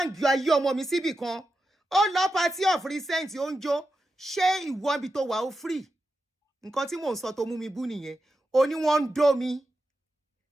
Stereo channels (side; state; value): both; normal; correlation 0.89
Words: ayé ọmọ mi síbì kan. Ó lọ party of recent ó ń jó, ṣé ìwọ ibi tó wà ó free? Nǹkan tí mò ń sọ tó mú mi bú nìyẹn. Ó ní wọ́n ń dó mi